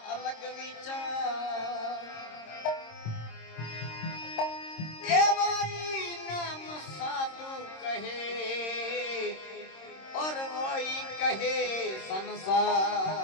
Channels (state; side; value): late; right; 26 ms